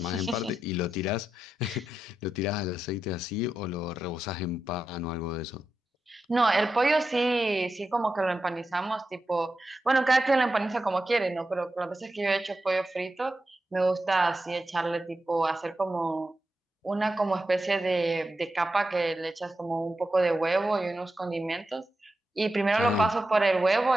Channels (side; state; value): both; normal; correlation 0.89